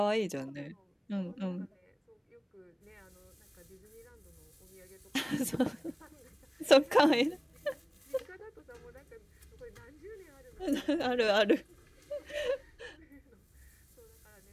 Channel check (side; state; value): both; identical; correlation 1.00